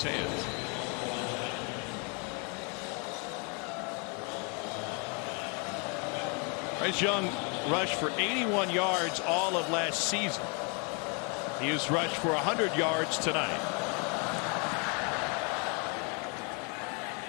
hands. Bryce Young rushed for 81 yards all of last season. He has rushed for 100 yards tonight.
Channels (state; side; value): quieter; right; 35.4 dB